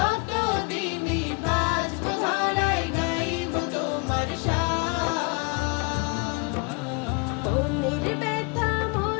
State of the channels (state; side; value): quieter; right; 31.5 dB